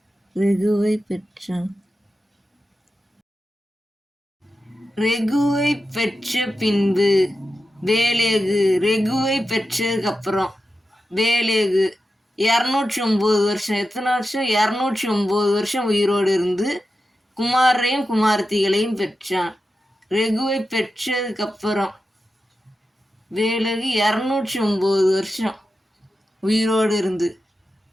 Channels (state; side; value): normal; both; correlation 0.91